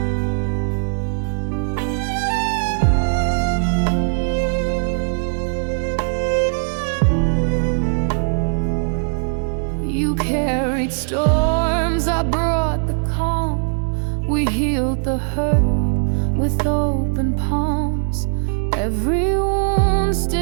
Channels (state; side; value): silent; left; digital silence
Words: You carried storms, I brought the calm. We healed the hurt with open palms. Every wound